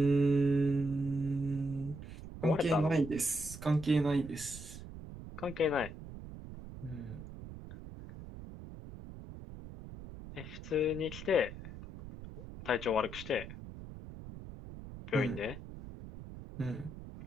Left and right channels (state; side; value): noise; right; rumble, 13 dB below the sound